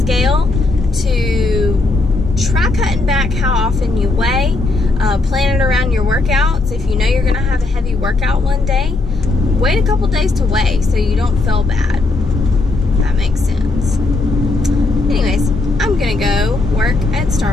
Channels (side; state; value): right; quieter; 3.2 dB